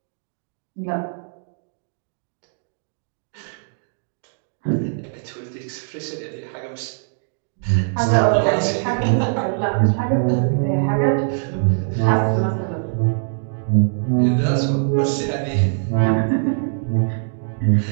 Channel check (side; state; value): left; silent; digital silence